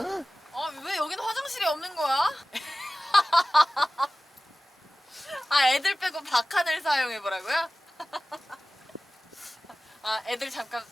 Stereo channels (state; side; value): normal; both; correlation 0.97